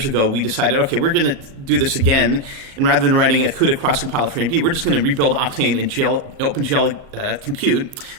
ago, we decided, okay, we're going to do this again. And rather than writing a CUDA cross-compiler for AMD, we're just going to rebuild Octane in OpenGL Compute,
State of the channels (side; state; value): left; late; 37 ms